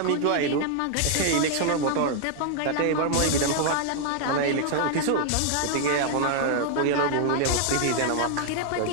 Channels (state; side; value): different; both; correlation 0.00